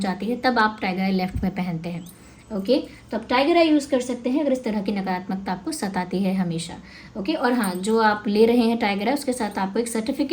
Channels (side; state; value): both; identical; correlation 1.00